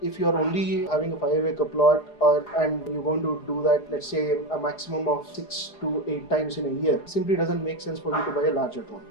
if you are only having a 5-acre plot and you're going to do that, let's say a maximum of 6 to 8 times in a year, simply doesn't make sense for you to buy a larger drone.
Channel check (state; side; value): late; right; 4.8 ms